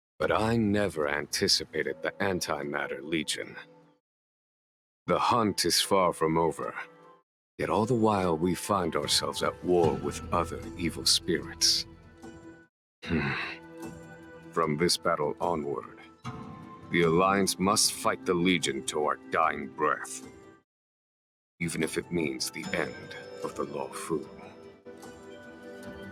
But I never anticipated the Antimatter Legion. The hunt is far from over, yet all the while we find ourselves at war with other evil spirits. From this battle onward, the Alliance must fight the Legion to our dying breath, even if it means the end of the Law Fu.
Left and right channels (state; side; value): identical; both; correlation 1.00